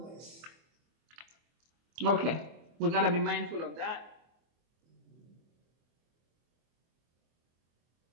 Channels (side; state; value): left; late; 24 ms